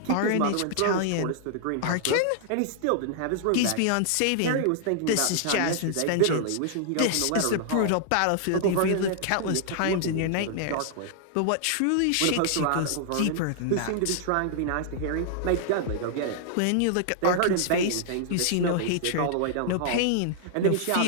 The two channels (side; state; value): both; different; correlation -0.01